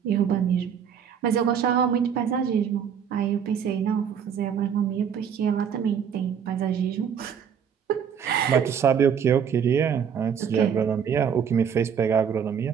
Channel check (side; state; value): left; quieter; 7.7 dB